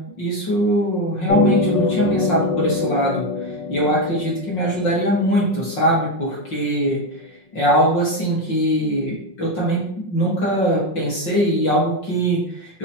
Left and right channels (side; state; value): right; late; 5.5 ms